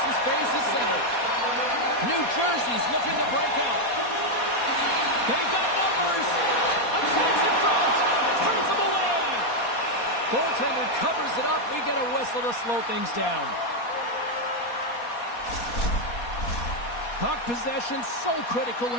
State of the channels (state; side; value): late; right; 4.2 ms